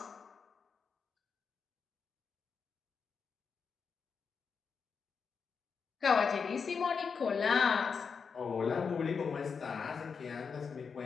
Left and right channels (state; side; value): quieter; right; 5.8 dB